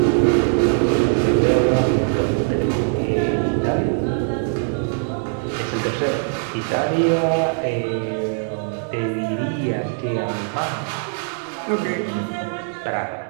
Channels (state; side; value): silent; left; digital silence